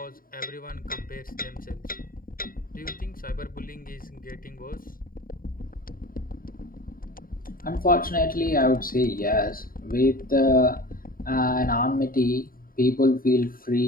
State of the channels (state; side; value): late; right; 0.41 ms